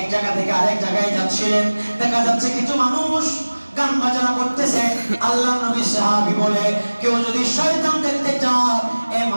জায়গা থেকে আরেক জায়গায় যাচ্ছিলেন। দেখা যাচ্ছে কিছু মানুষ গান বাজনা করতেছে। আল্লাহর নবীর সাহাবী বলে, কেউ যদি শয়তান দেখতে চাও, এই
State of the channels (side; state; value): both; inverted; correlation -1.00